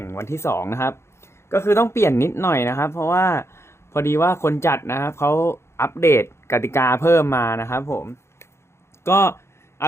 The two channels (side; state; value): right; late; 0.13 ms